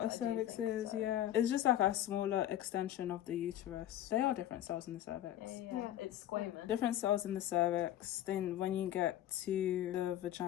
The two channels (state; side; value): quieter; right; 12.3 dB